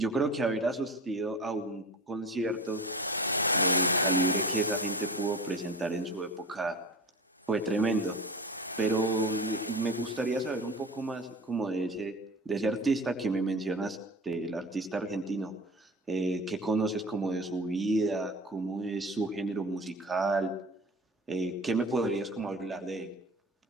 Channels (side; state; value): both; normal; correlation 0.34